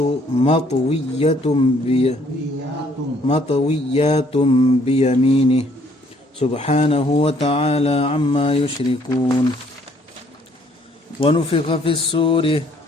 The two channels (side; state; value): both; normal; correlation 0.64